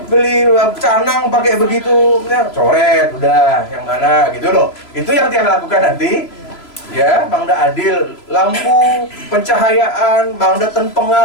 beli canang pakai begitu, ya, coret udah yang mana gitu loh. Itu yang tiang lakukan nanti, ya. Mangda adil, lampu, pencahayaan, mangda ten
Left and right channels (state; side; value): late; right; 3.0 ms